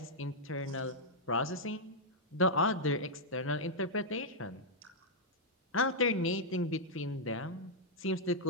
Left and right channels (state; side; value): normal; both; correlation -0.07